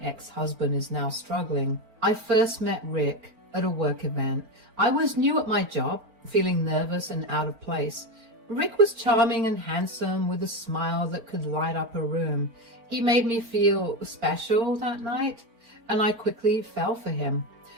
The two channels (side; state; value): left; late; 4.4 ms